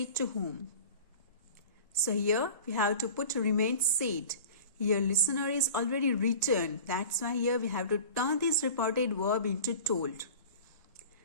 to whom? So here we have to put remain said. Here listener is already written. That's why here we have to turn this reported verb into told.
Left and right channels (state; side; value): inverted; both; correlation -0.40